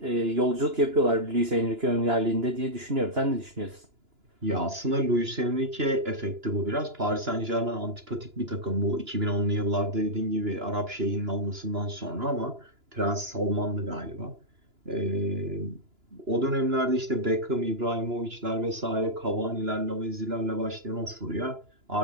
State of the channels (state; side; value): late; left; 2.9 ms